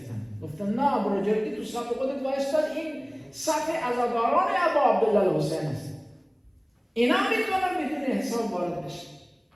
گفتن نه بروجردی تو صف خودت وایستاد، این صف عزاداران ابا عبدالله الحسین است، اینا میتونن بدون حساب وارد بشه.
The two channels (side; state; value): both; identical; correlation 1.00